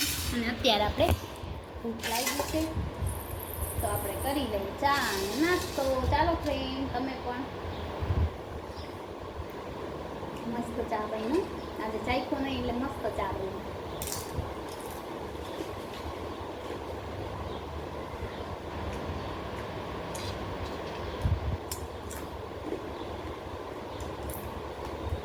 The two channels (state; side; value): identical; both; correlation 1.00